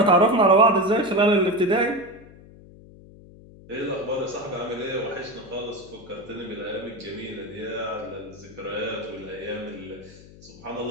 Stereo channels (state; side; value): noise; left; hum, 21 dB below the sound